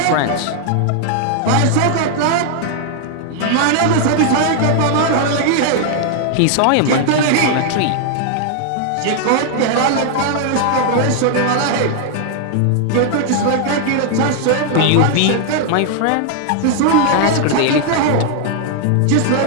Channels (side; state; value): both; different; correlation 0.00